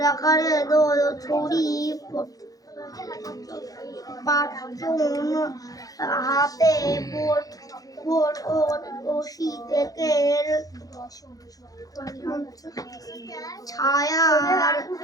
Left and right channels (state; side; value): late; right; 0.17 ms